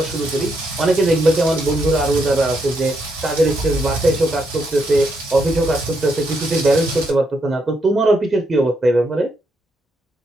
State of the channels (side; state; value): both; normal; correlation 0.79